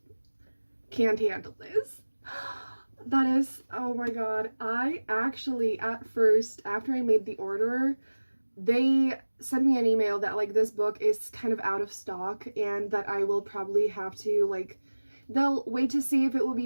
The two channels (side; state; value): both; inverted; correlation -1.00